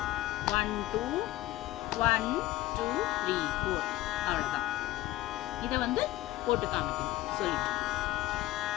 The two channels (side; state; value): right; quieter; 16.3 dB